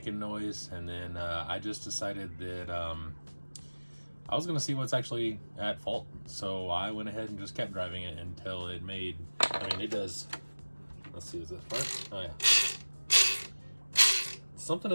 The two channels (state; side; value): inverted; both; correlation -1.00